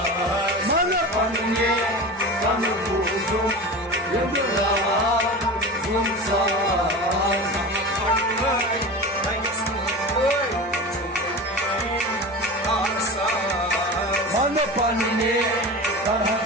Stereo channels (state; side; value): normal; both; correlation 0.30